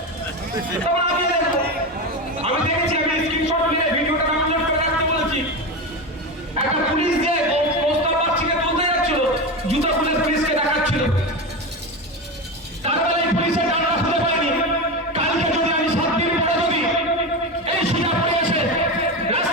তখন আমি দেখবো। আমি দেখেছি, আমি স্ক্রিনশট নিয়ে ভিডিওটা ডাউনলোড করে রাখতে বলেছি। একটা পুলিশ দিয়ে প্রস্তাব পাচ্ছিকে তুলতে যাচ্ছিল, জুতা খুলে পুলিশকে দেখাচ্ছিল। তারপরে এই পুলিশের ডান্ডা খুঁজে পাইনি। কালকে যদি আমি 7 দিন পরে যদি এই সুজাপুরে এসে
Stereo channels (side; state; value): both; normal; correlation 0.20